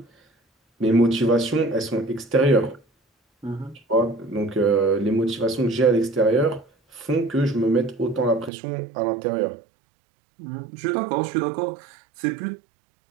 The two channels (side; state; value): left; drops out; at 8.5 s